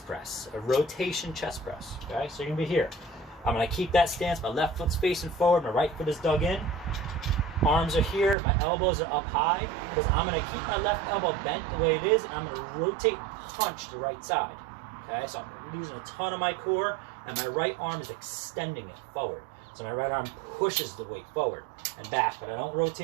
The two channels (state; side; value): drops out; left; at 8.3 s